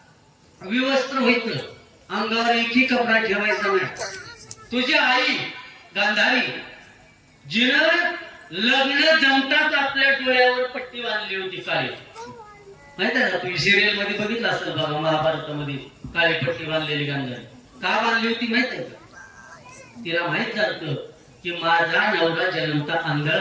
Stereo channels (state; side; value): identical; both; correlation 1.00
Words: विवस्त्र व्हायचं, अंगावर एकही कपडा ठेवायचा नाही. तुझी आई गांधारी जिनं लग्न जमताच आपल्या डोळ्यावर पट्टी बांधली होती काळी, माहित आहे का, तुम्ही सिरियल मध्ये बघितलं असेल बघा, महाभारतामध्ये काळी पट्टी बांधलेली गांधारी का बांधली होती माहित आहे का. तिला माहित झालं की माझा नवरा जन्मता